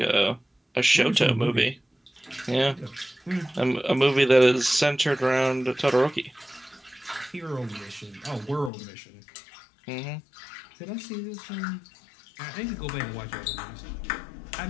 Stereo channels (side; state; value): right; drops out; at 8.7 s